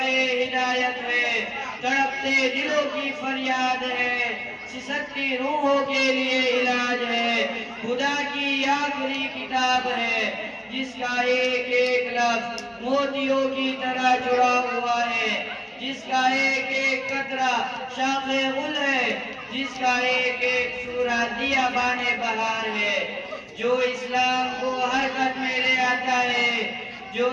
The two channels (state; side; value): identical; both; correlation 1.00